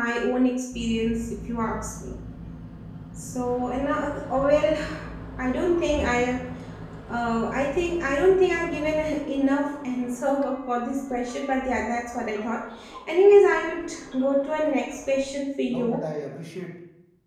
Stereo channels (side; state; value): both; identical; correlation 1.00